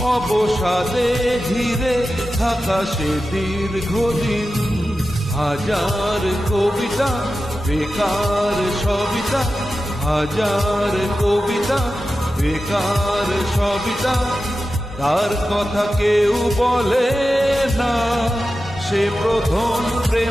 অবসাদে ঘিরে থাকা সে দীর্ঘদিন। হাজার কবিতা বেকার সবিতা, হাজার কবিতা বেকার সবিতা, তার কথা কেউ বলে না। সে প্রথম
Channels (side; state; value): both; normal; correlation 0.92